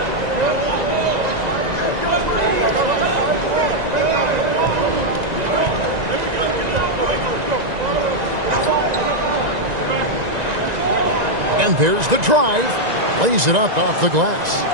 And there's the drive. Lays it up off the glass.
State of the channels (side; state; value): left; late; 1.9 ms